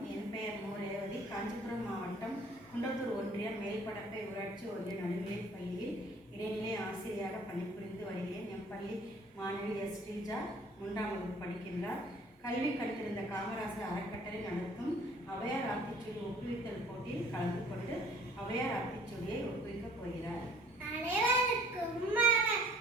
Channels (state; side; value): normal; both; correlation 0.55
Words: என் பெயர் மு. ரேவதி. காஞ்சிபுரம் மாவட்டம் குன்றத்தூர் ஒன்றியம் மேல்படப்பை ஊராட்சி ஒன்றிய நடுநிலைப் பள்ளியில் இடைநிலை ஆசிரியராக பணிபுரிந்து வருகிறேன். என் பள்ளி மாணவி எஸ். ஸ்ரீஜா 3ஆம் வகுப்பு படிக்கின்றார். கல்வி கற்றிருந்த காமராசர் அறக்கட்டளை நடத்தும் ஔவையார் ஆத்திச்சூடி ஒப்புவித்தல் போட்டியில் கலந்து கொண்டு ஔவையார் ஆத்திச்சூடியை ஒப்புவிக்கப் போகிறார். அனைவருக்கும்